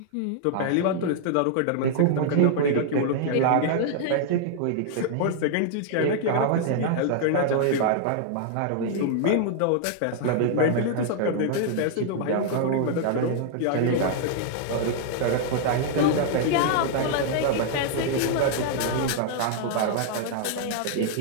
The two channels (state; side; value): different; both; correlation -0.01